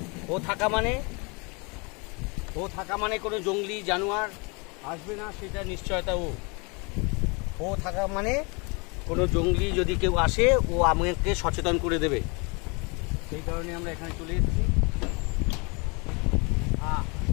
ও থাকা মানে কোনো জঙ্গলি জানোয়ার আসবে না, সেটা নিশ্চয়তা। ও থাকা মানে কোনো জঙ্গলি যদি কেউ আসে, ও আমাকে সচেতন করে দেবে। সেই কারণে আমরা এখানে চলে এসেছি।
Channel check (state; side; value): quieter; right; 30.6 dB